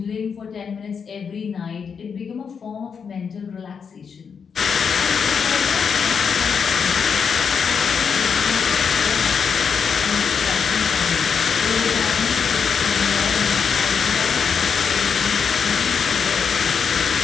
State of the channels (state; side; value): quieter; right; 6.4 dB